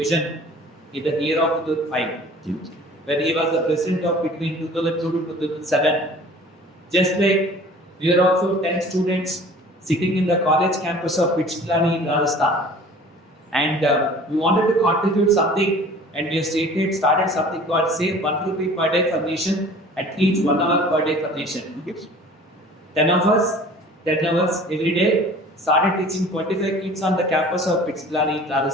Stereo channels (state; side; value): normal; both; correlation 0.46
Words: in the year of 2005, when he was the president of between 2002 to 2007, just like we are also 10 students sitting in the college campus of Pichplani in Rajasthan, and we wanted to contribute something, and we started something called Save 1 rupee per day for nation at each 1 hour per day for nation. 10 of us, 10 hours every day, started teaching 25 kids on the campus of Pichplani in